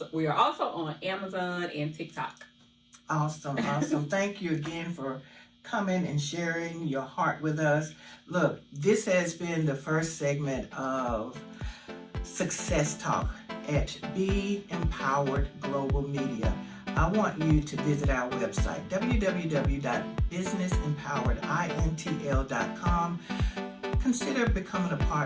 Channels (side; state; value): both; identical; correlation 1.00